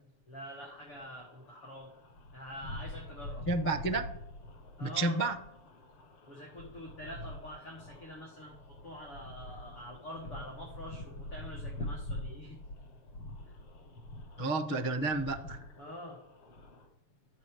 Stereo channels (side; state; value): right; late; 7.1 ms